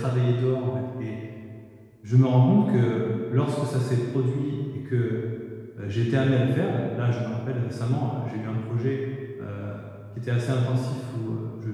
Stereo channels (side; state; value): both; identical; correlation 1.00